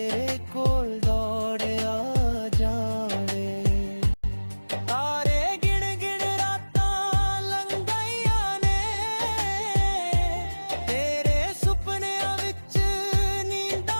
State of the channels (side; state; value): both; inverted; correlation -1.00